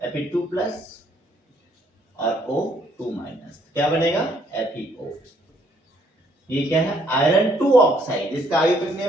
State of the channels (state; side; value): normal; both; correlation 0.67